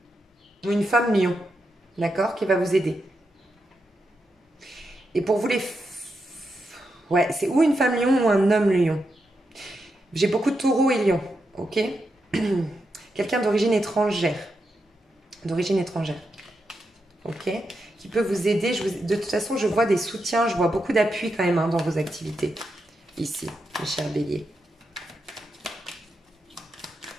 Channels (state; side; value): normal; both; correlation 0.85